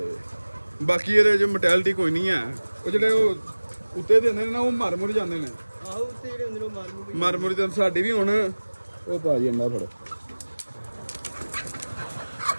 ਬਾਕੀ ਇਹਦੇ ਜੋ ਮੋਰਟੈਲਿਟੀ ਕੋਈ ਨਹੀਂ ਹੈ, ਉਹ ਜਿਹੜੇ ਉਹ ਉੱਤੇ ਦਿੰਦੇ ਨੇ ਨਾ, ਉਹ ਮਰ ਮੁਰ ਜਾਂਦੇ ਨੇ। ਆਹੋ ਉੱਤੇ ਜਿਹੜੇ ਹੁੰਦੇ ਨੇ ਉਹ ਮਰ ਮੁਰ ਜਾਂਦੇ। ਸਾਡੀ ਵੀ ਹੁਣ ਉਹ ਭਾਜੀ ਅੰਡਾ ਫੜੋ,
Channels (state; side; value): inverted; both; correlation -1.00